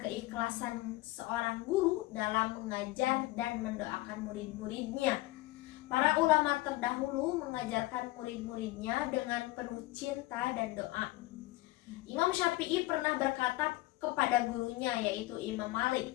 keikhlasan seorang guru dalam mengajar dan mendoakan murid-muridnya. Para ulama terdahulu mengajarkan murid-muridnya dengan penuh cinta dan doa. Imam Syafi'i pernah berkata kepada gurunya yaitu Imam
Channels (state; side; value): quieter; right; 18.8 dB